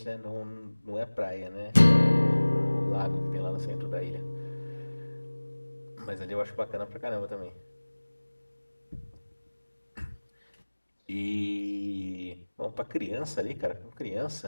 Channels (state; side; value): inverted; both; correlation -1.00